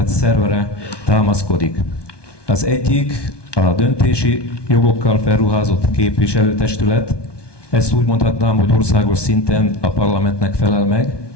szervere támaszkodik. Az egyik a döntési jogokkal felruházott képviselőtestület, ezt úgy mondhatnám, hogy országos szinten a parlamentnek felel meg,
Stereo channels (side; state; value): right; late; 1.2 ms